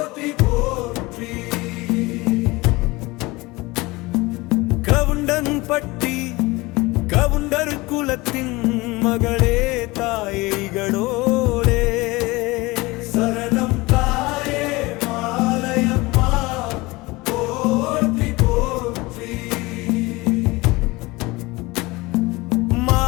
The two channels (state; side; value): quieter; right; 22.3 dB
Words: போற்றி. கவுண்டன் பட்டி கவுண்டர் குலத்தின் மகளே தாயே இகடோரே சரணம் தாயே மாலையம்மா போற்றி போற்றி.